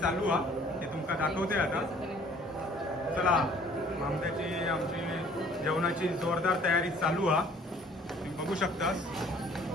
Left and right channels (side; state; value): both; normal; correlation 0.55